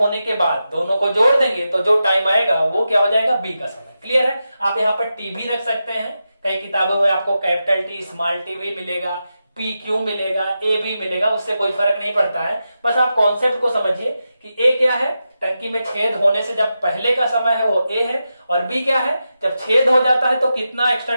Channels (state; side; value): inverted; both; correlation -0.90